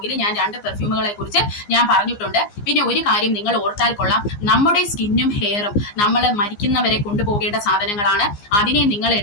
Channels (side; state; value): right; late; 15 ms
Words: ഞാൻ 2 പെർഫ്യൂമുകളെ കുറിച്ച് ഞാൻ പറഞ്ഞിട്ടുണ്ട്. പിന്നെ ഒരു കാര്യം നിങ്ങൾ ഓർത്താൽ കൊള്ളാം, നമ്മുടെ സ്കിന്നും ഹെയറും നമ്മൾ മരിക്കുന്നവരെ കൊണ്ടുപോകേണ്ട സാധനങ്ങളാണ്. അതിനെ നിങ്ങൾ